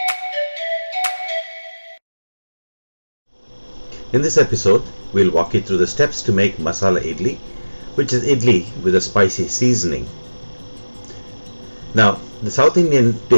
In this episode, we'll walk you through the steps to make Masala Idly, which is idli with a spicy seasoning. Now, the South Indian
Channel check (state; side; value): inverted; both; correlation -1.00